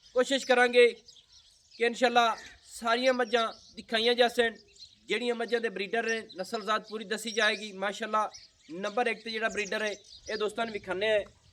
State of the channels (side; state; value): both; identical; correlation 1.00